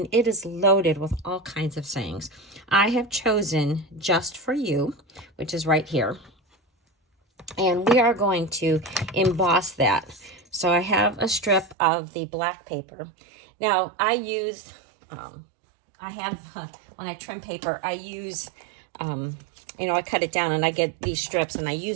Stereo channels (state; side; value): drops out; left; at 11.8 s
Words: it is loaded with all kinds of sayings. I have chosen Just For You, which is right here. And we are going to emboss that. So I have a strip of the black paper. Now, I use, when I trim paper, I use, you know, I cut it down and I get these strips and I